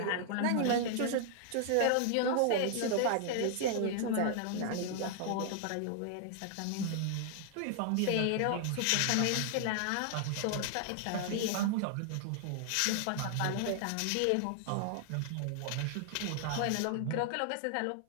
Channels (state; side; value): different; both; correlation 0.00